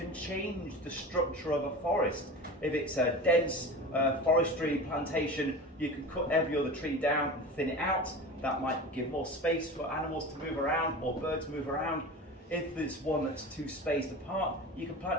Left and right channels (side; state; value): both; normal; correlation 0.32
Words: change the structure of a forest. If it's a dense forestry plantation, you can cut every other tree down and thin it out. That might give more space for animals to move around or birds move around. If there's one that's too spaced apart, you can